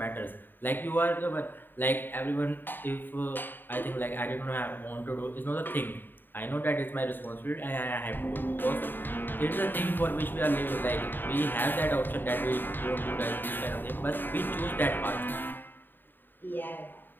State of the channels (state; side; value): late; right; 0.093 ms